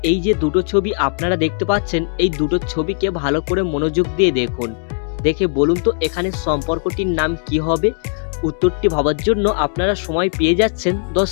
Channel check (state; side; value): silent; right; 60 dB below the other